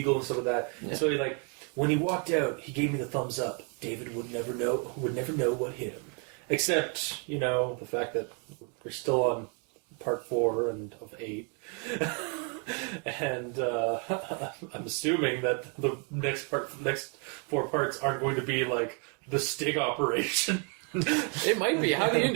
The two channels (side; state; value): left; quieter; 37.8 dB